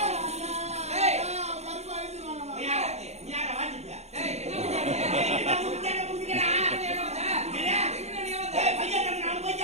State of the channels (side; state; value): left; late; 0.32 ms